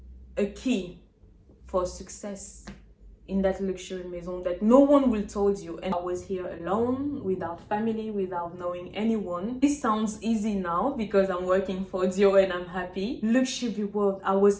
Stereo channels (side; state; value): both; identical; correlation 1.00